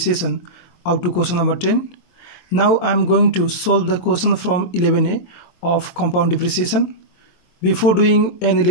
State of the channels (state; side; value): late; right; 23 ms